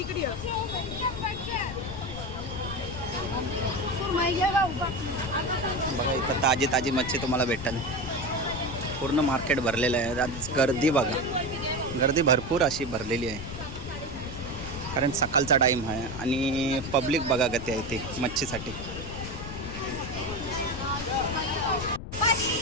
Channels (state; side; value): noise; left; rumble, 9 dB below the sound